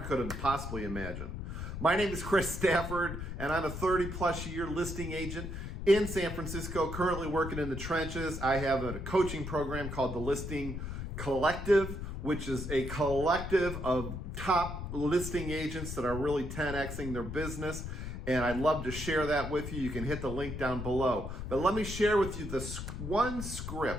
could have possibly imagined. My name is Chris Stafford, and I'm a 30-plus year listing agent in San Francisco, currently working in the trenches. I have a coaching program called the Listing Collective, which is a collective of top listing agents that are really 10Xing their business. And I'd love to share that with you. You can hit the link down below. But let me share with you the one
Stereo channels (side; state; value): left; noise; rumble, 6 dB below the sound